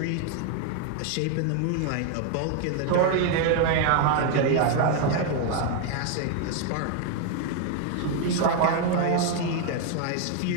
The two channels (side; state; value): both; different; correlation 0.00